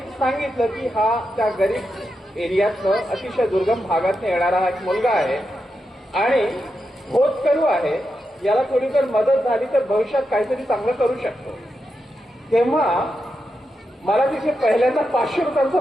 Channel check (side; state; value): both; normal; correlation 0.87